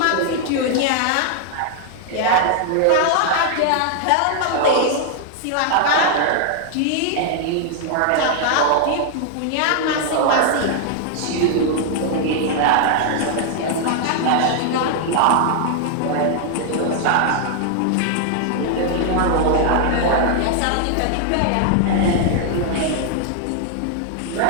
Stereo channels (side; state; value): both; different; correlation 0.00